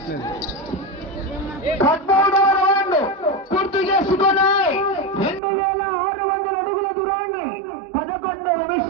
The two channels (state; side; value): drops out; left; at 5.4 s